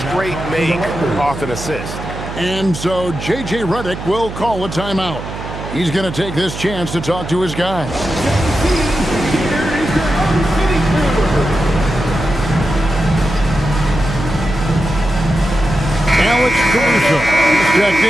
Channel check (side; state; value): right; noise; hum, 9 dB below the sound